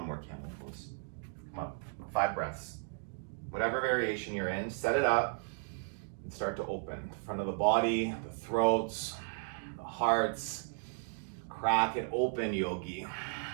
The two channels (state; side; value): silent; left; digital silence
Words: more camel pose. Come on, 5 breaths. Whatever variation you're in, set it up and start to open. The front of the body, the throats, the hearts. Crack it open, yogi.